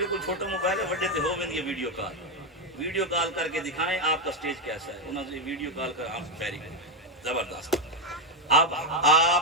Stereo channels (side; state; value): both; normal; correlation 0.05